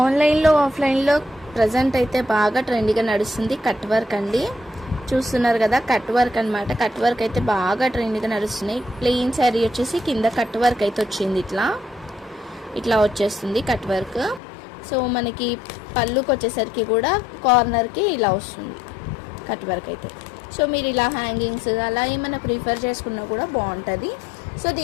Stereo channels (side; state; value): right; drops out; at 14.4 s